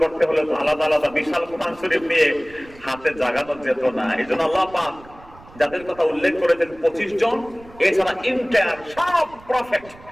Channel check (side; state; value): right; noise; rumble, 22 dB below the sound